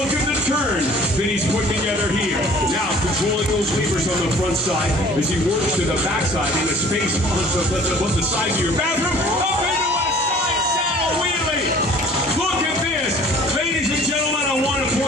at the turn that he's put together here. Now controlling those levers on the front side as he works to the backside in a space on the side of your bathroom. Up into a side saddle wheelie. Look at this. Ladies and gentlemen, I want to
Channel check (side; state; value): both; normal; correlation 0.51